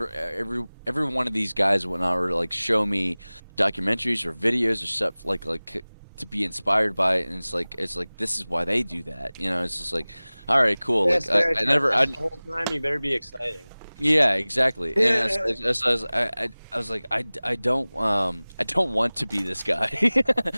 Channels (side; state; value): both; inverted; correlation -0.99